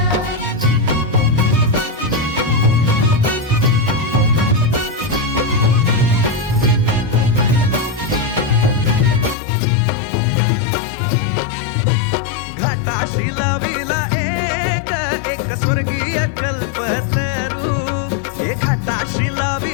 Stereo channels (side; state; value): right; drops out; at 9.3 s